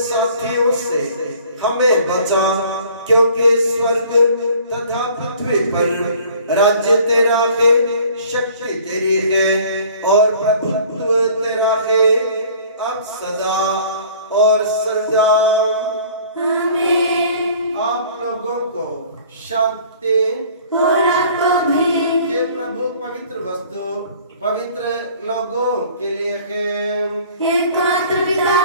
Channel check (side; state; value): both; inverted; correlation -0.51